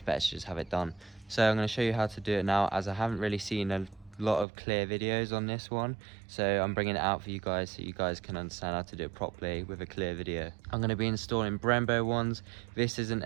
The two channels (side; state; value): left; drops out; at 4.5 s